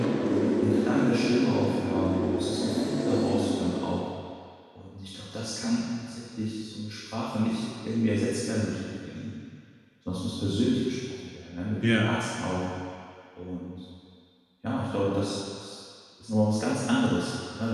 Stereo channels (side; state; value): both; identical; correlation 1.00